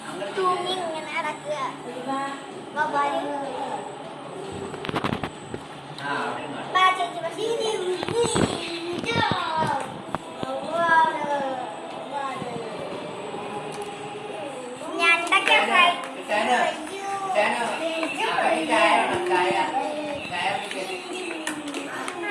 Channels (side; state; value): both; identical; correlation 1.00